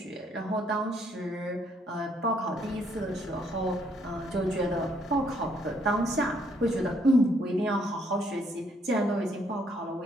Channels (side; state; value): both; normal; correlation 0.69